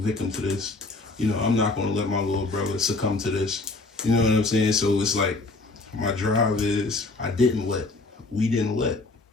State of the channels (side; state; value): right; quieter; 3.4 dB